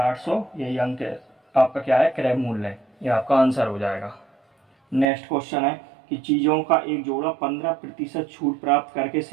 यही अंक आपका क्या है क्रय मूल्य है, ये आपका आंसर हो जाएगा। नेक्स्ट क्वेश्चन है कि चीज़ों का एक जोड़ा 15% छूट प्राप्त करके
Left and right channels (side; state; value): left; drops out; at 5.1 s